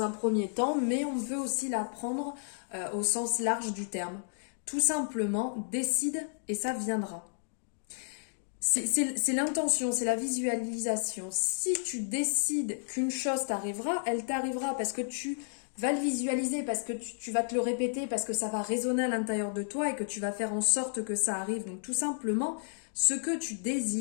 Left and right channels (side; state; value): right; silent; digital silence